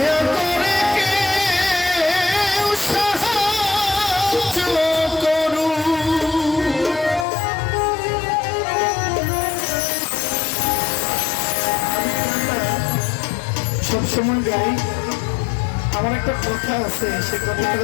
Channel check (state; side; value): drops out; right; at 7.2 s